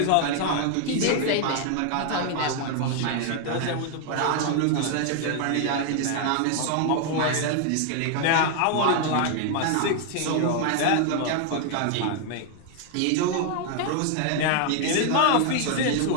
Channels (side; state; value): both; different; correlation 0.00